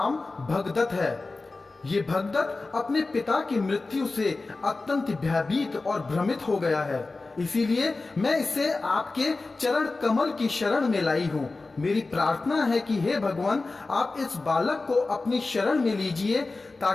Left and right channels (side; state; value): right; quieter; 3.5 dB